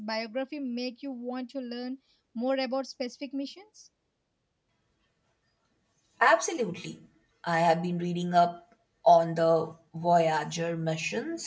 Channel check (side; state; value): both; identical; correlation 1.00